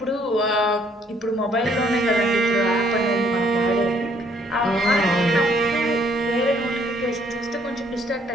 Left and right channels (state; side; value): normal; both; correlation 0.65